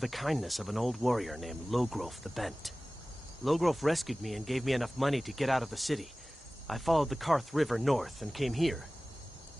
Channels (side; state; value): both; normal; correlation 0.98